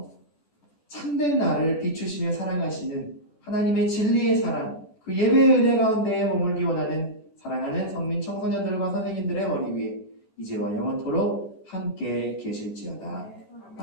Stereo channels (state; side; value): late; right; 14 ms